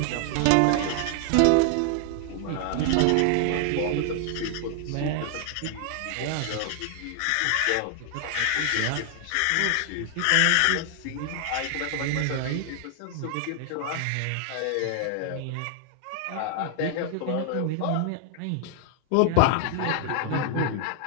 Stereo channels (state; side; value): different; both; correlation 0.00